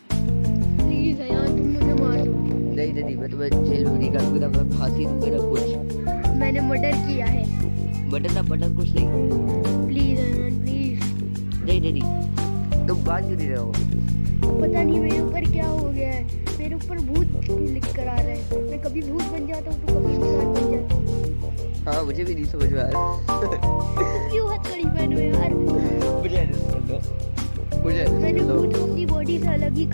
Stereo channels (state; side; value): inverted; both; correlation -1.00